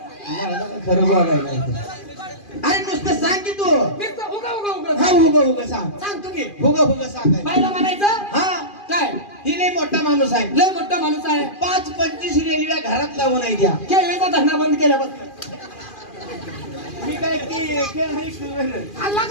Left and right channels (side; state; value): right; late; 2.4 ms